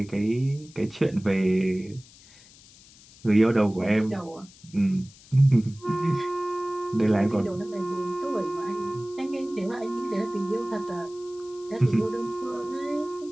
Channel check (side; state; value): left; noise; hiss, 23 dB below the sound